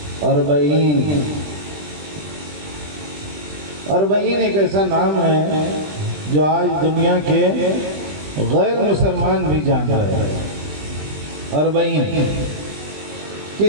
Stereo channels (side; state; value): left; late; 20 ms